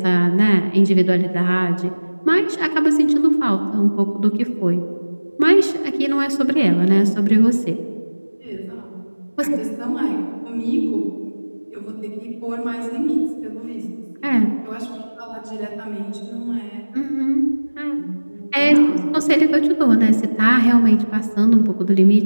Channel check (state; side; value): inverted; both; correlation -1.00